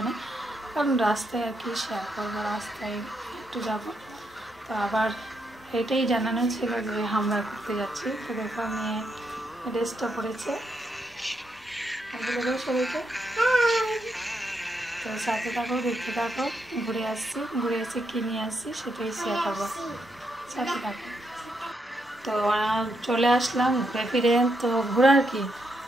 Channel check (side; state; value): both; normal; correlation 0.80